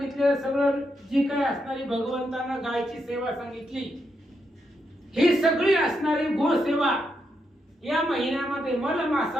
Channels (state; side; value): normal; both; correlation 0.82